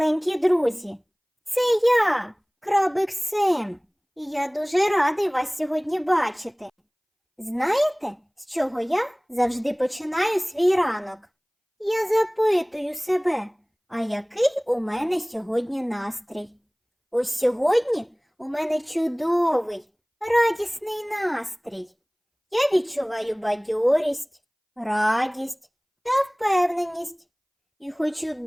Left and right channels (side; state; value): both; identical; correlation 1.00